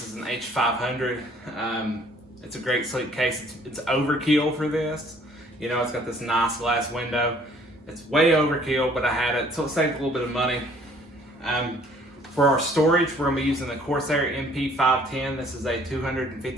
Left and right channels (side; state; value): both; normal; correlation 0.58